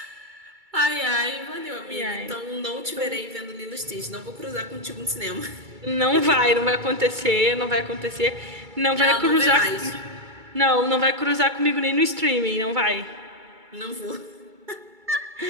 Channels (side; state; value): left; late; 2.3 ms